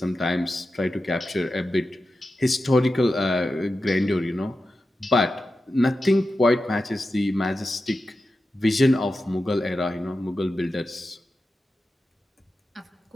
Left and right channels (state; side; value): normal; both; correlation 0.91